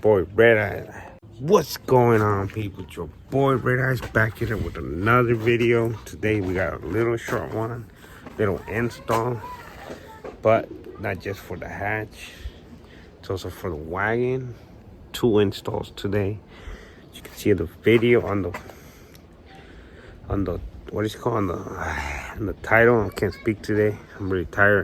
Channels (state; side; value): identical; both; correlation 1.00